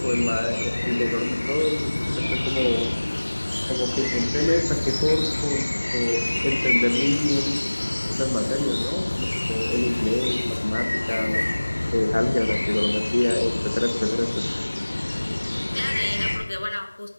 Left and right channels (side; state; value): both; inverted; correlation -1.00